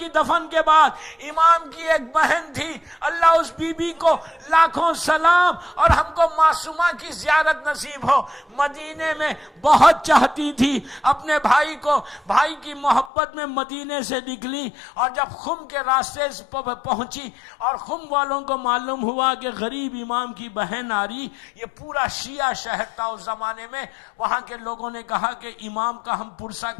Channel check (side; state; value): right; drops out; at 13.1 s